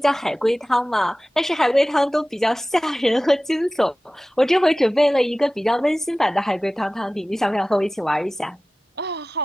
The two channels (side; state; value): both; normal; correlation 0.96